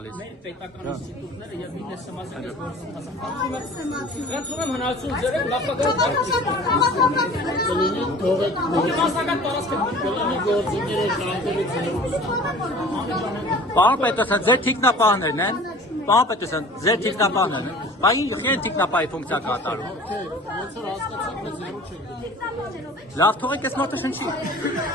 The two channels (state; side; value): normal; both; correlation 0.45